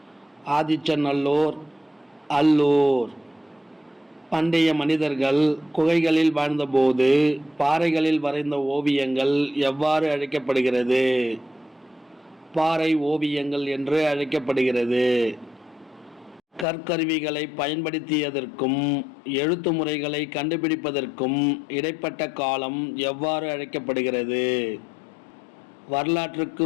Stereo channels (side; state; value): right; drops out; at 16.7 s